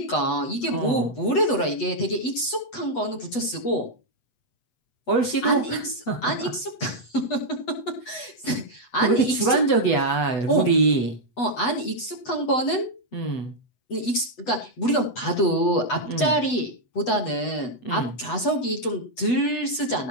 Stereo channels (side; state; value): right; late; 8.1 ms